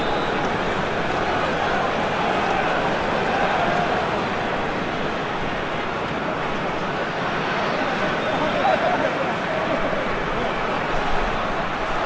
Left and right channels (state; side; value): identical; both; correlation 1.00